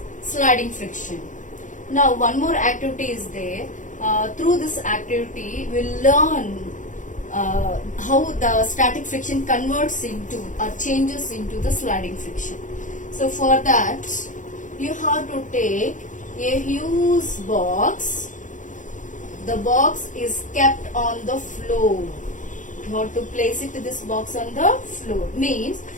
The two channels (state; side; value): late; right; 0.37 ms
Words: sliding friction. Now one more activity is there. Through this activity we'll learn how the static friction converts into or changes into the sliding friction. So for that you have to take a huge box. The box is kept on the floor. You have to place it this box on the floor. Means